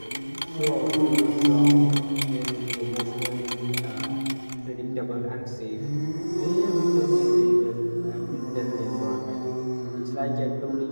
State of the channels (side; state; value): both; inverted; correlation -1.00